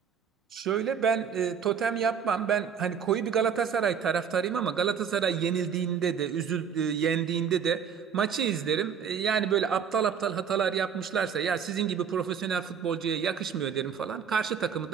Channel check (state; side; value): quieter; left; 7.3 dB